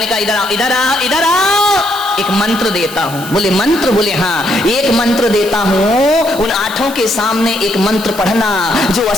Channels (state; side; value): noise; right; hiss, 14 dB below the sound